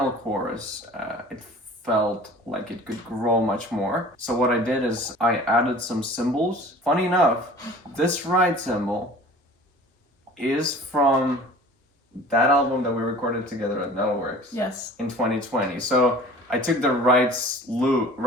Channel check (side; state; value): both; normal; correlation 0.44